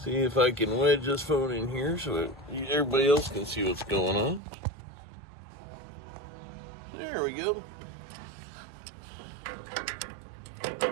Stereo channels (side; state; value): left; drops out; at 4.4 s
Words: if I can wedge this phone in here so that everybody else can see what's going on. There we go.